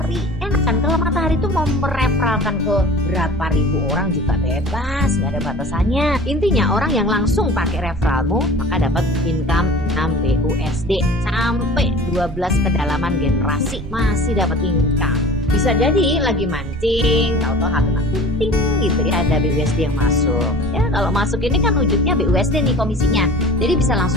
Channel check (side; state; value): right; noise; rumble, 10 dB below the sound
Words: Enak kan, kalau matahari tuh mau mereferalkan ke berapa ribu orang juga bebas, nggak ada batasannya. Intinya orang yang langsung pakai referralmu maka dapat income 6 BUSD sampai 12 kedalaman generasi masih dapat income. Bisa jadi lagi mancing, tahu-tahu kena kunting gitu ya, ada BUSD yang masuk. Ya kalau masuk ini kan wujudnya BUSD nih komisinya. Jadi bisa